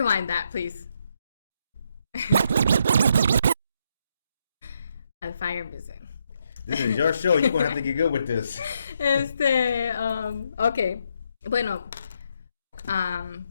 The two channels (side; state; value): both; inverted; correlation -0.77